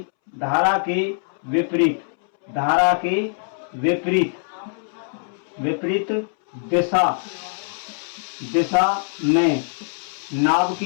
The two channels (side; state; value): right; silent; 64 dB below the other